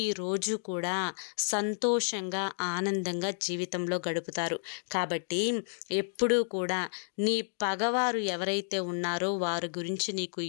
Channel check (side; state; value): right; silent; digital silence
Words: కూడా సంతోషంగా, ఆనందంగా జీవితంలో గడుపుతారు. కాబట్టి ఎప్పుడూ కూడా నీ పగవారు ఎవరైతే ఉన్నారో వారి గురించి నీకు